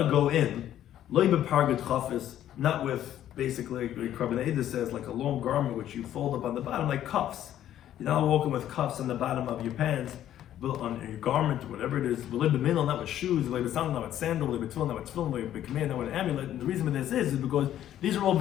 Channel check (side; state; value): right; quieter; 11.6 dB